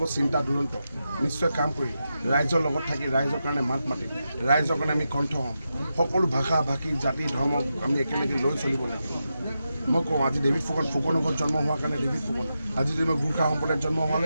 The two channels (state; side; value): inverted; both; correlation -0.88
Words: চিন্তা দুৰন্ত, নিশ্চয় কাম কৰিম, ৰাইজৰ লগত থাকি ৰাইজৰ কাৰণে মাত মাতিম, ৰাইজৰ কাৰণে আমি কণ্ঠ হ'ম। সকলো ভাষা ভাষী জাতি ধৰ্ম আমি একেলগে লৈ চলিব লাগিব। মই কওঁ আজি ডেভিড ফুকনৰ ঘৰত জন্ম হোৱাৰ কাৰণে ডেভিড ফুকন, আজি যদি মই গোৰ্খা সম্প্ৰদায়ত জন্ম হোৱালে